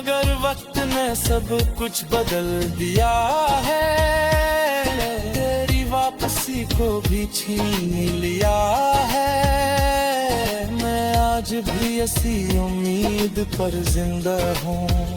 वक्त ने सब कुछ बदल दिया है, तेरी वापसी को भी छीन लिया है। मैं आज भी इसी उम्मीद पर जिंदा हूँ,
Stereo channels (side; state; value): both; identical; correlation 1.00